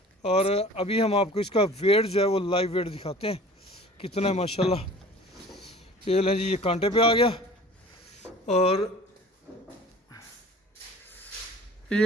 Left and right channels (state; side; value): normal; both; correlation 0.45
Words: और अभी हम आपको इसका वेट जो है वो लाइव वेट दिखाते हैं कितना है माशाल्लाह। ये लें जी, ये कांटे पे आ गया। और